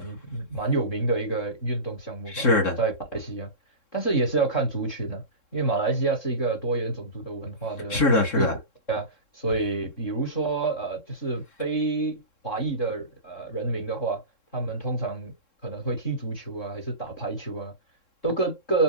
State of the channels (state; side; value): late; right; 3.7 ms